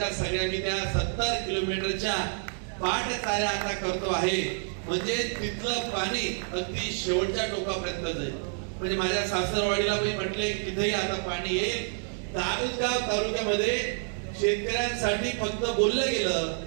सगळ्या मी त्या 70 किलोमीटरच्या पाटचाऱ्या आता करतो आहे. म्हणजे तिथलं पाणी अगदी शेवटच्या टोकापर्यंत जाईल. म्हणजे माझ्या सासरवाडीला मी म्हटले तिथेही आता पाणी येईल. दारुगाव तालुक्यामध्ये शेतकऱ्यांसाठी फक्त बोललं गेलं,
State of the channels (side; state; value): left; silent; 59 dB below the other